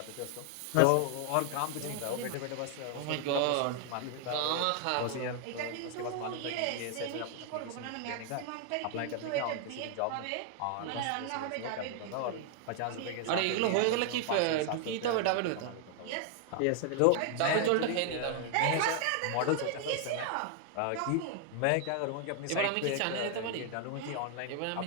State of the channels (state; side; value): different; both; correlation 0.00